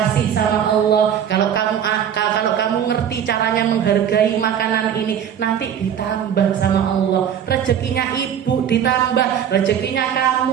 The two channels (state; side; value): quieter; left; 9.0 dB